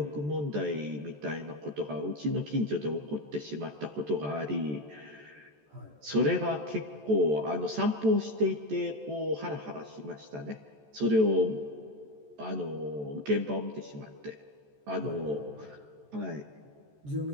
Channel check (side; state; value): left; late; 14 ms